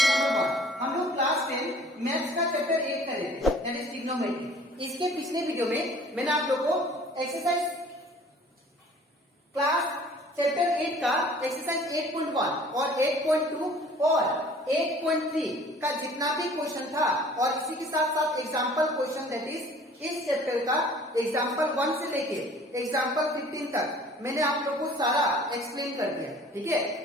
नंबर 1। हम लोग क्लास 10 मैथ्स का चैप्टर 8 कर रहे थे दैट इज ट्रिग्नोमेट्री। इसके पिछले वीडियो में मैंने आप लोगों को एक्सरसाइज क्लास चैप्टर 8 का एक्सरसाइज 8.1 और 8.2 और 8.3 का जितना भी क्वेश्चन था और इसी के साथ साथ एग्जाम्पल क्वेश्चन दैट इज इस चैप्टर का एग्जाम्पल 1 से लेके एग्जाम्पल 15 तक मैंने आप लोगों को सारा एक्सप्लेन कर दिया। ठीक है,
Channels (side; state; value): both; normal; correlation 0.51